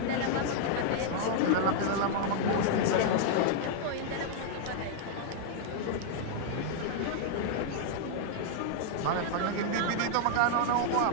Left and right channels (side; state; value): both; different; correlation -0.01